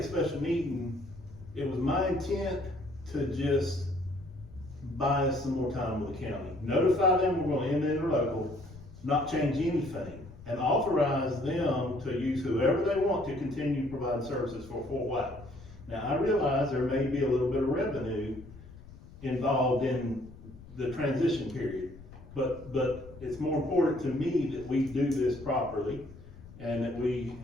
special meeting, it was my intent to just buy us some more time with the county. Notify them we're gonna end the interlocal, not change anything, and authorize them to use whoever they want to continue providing services for Fort White. Now, I realize there may be a little bit of revenue involved in the transition period, but it's more important to me that we do this properly and that we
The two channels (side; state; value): left; noise; rumble, 18 dB below the sound